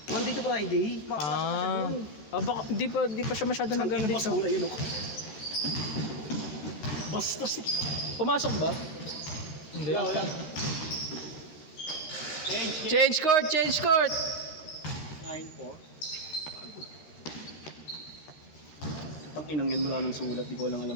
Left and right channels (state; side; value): late; right; 13 ms